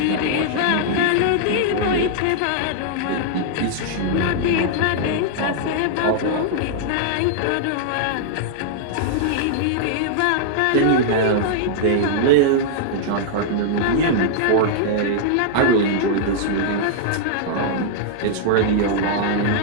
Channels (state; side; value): different; both; correlation -0.01